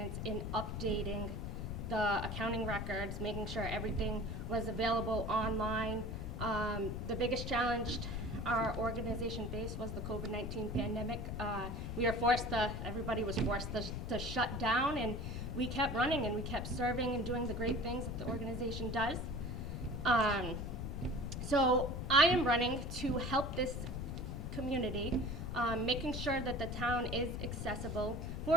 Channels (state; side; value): noise; left; rumble, 4 dB below the sound